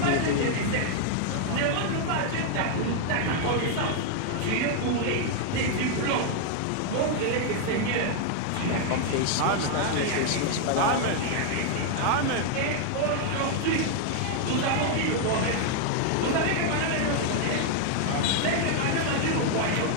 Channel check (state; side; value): different; both; correlation 0.00